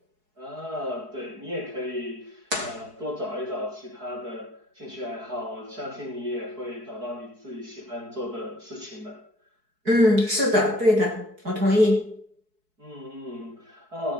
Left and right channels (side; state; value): left; late; 4.7 ms